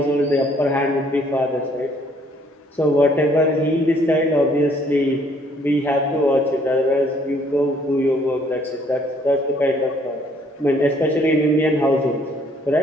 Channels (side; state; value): both; normal; correlation 0.63